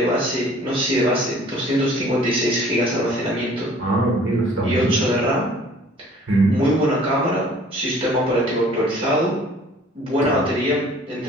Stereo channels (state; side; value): normal; both; correlation 0.52